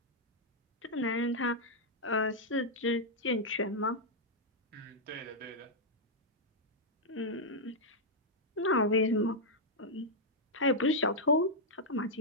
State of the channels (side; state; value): both; normal; correlation -0.05